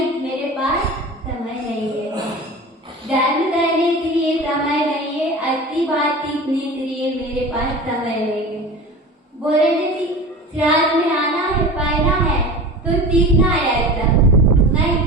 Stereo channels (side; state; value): both; normal; correlation 0.34